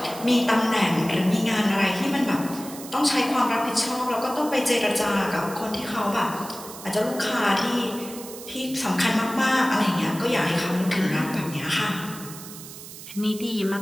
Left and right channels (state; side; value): noise; right; hiss, 14 dB below the sound